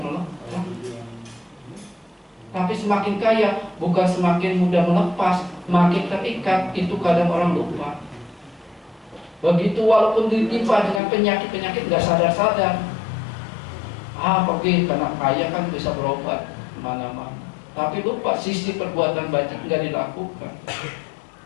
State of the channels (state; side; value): drops out; right; at 11.0 s